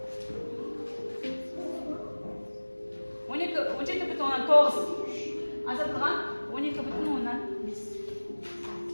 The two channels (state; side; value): inverted; both; correlation -1.00